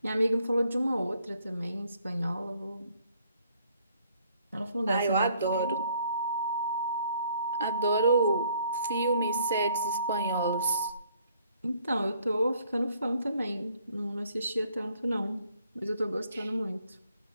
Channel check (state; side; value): inverted; both; correlation -0.63